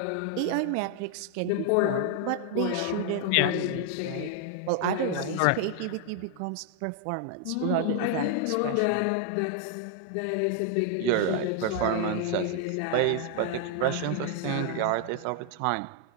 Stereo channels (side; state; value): both; different; correlation 0.00